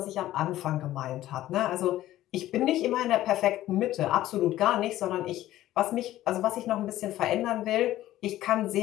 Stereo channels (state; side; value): quieter; right; 14.4 dB